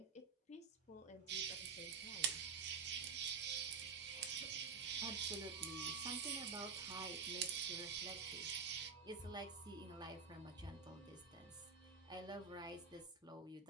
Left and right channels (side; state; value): left; quieter; 5.5 dB